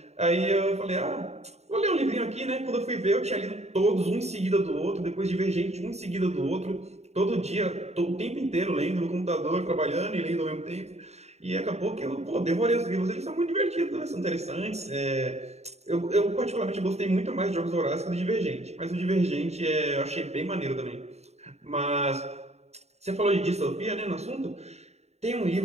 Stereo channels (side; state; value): left; late; 0.31 ms